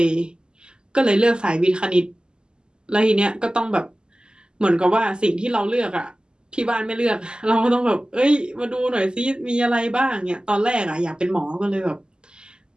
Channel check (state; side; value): late; left; 0.047 ms